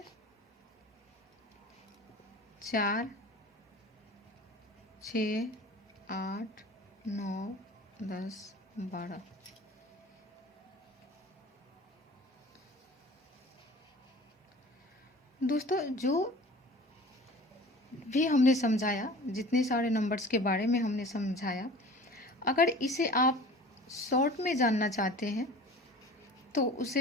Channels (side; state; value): both; normal; correlation 0.42